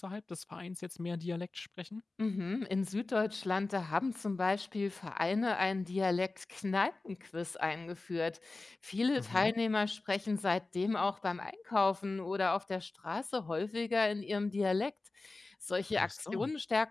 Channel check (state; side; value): quieter; right; 3.4 dB